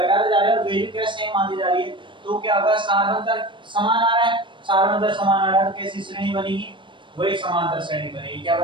जा रहे हैं और वैल्यू क्या सेम आती जा रही है, तो क्या होगा, सारवंतर समान आ रहा है, सारवंतर समान आ रहा है, तो कैसी श्रेणी बनेगी, वही समांतर श्रेणी बनेगी। क्या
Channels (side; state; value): left; late; 0.24 ms